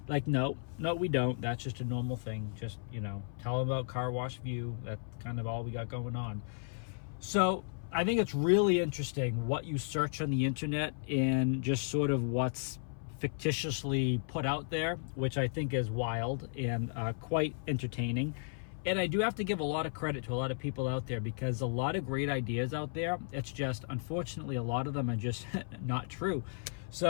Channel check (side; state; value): right; silent; 55 dB below the other